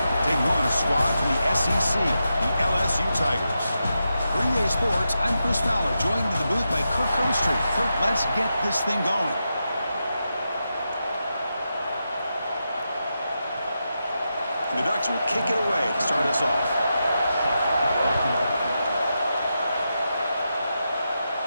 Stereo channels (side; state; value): both; inverted; correlation -0.87